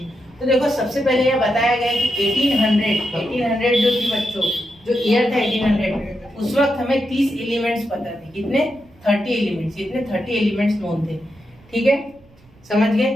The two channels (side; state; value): right; noise; rumble, 28 dB below the sound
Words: तो देखो, सबसे पहले यह बताया गया कि 1800 जो थी बच्चों, जो ईयर था 1800, उस वक्त हमें 30 एलिमेंट्स पता थे। कितने? 30 एलिमेंट्स। इतने 30 एलिमेंट्स नोन थे, ठीक है, समझ गए।